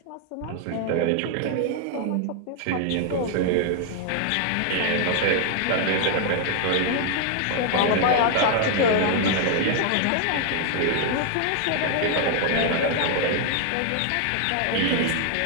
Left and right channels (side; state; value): both; different; correlation 0.00